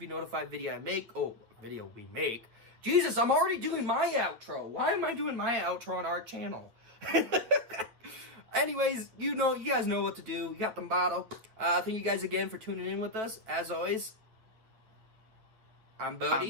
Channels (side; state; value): left; late; 8.9 ms